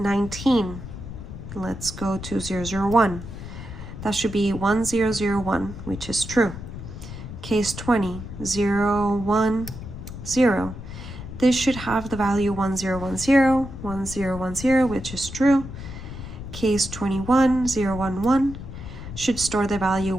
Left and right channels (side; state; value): left; noise; rumble, 10 dB below the sound